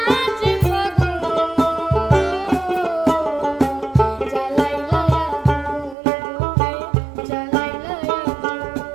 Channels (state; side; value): drops out; left; at 6.0 s